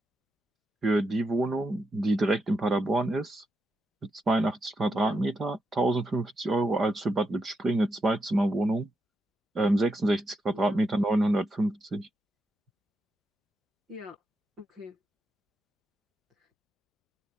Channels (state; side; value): normal; both; correlation 0.84